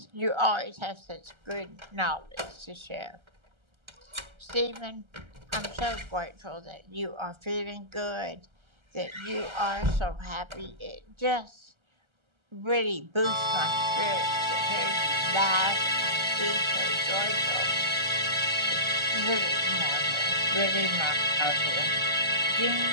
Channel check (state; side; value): late; left; 1.3 ms